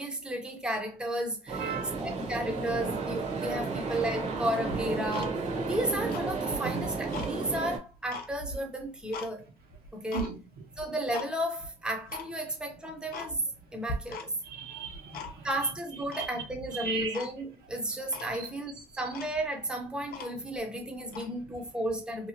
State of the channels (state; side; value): normal; both; correlation 0.47